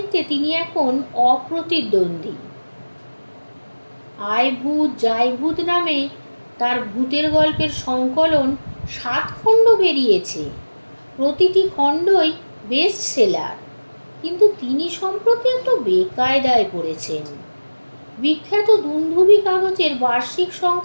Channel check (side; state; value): both; inverted; correlation -1.00